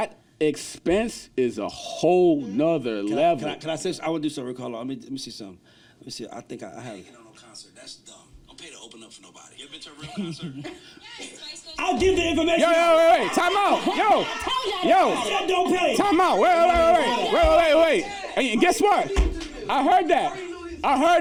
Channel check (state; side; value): identical; both; correlation 1.00